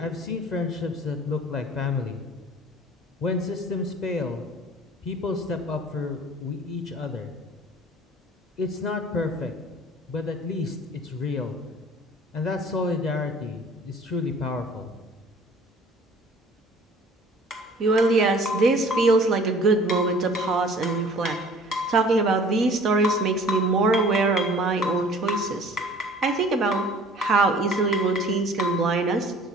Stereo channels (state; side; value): normal; both; correlation 0.49